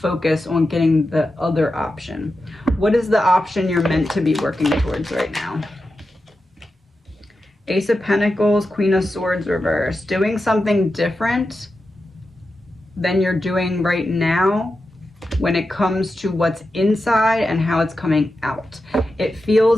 on getting the other option. What is the option you're meant to be working towards right now? Ace of Pentacles, Queen of Swords reversed. Doing something different than you're doing right now when it comes to what's inside and how it's coming out. It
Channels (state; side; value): normal; both; correlation 0.90